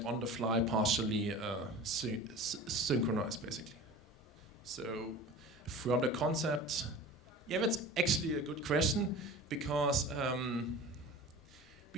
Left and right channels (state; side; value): normal; both; correlation 0.37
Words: on the fly partially synchronized, basically. So from the concept, yeah, that's actually a good question, because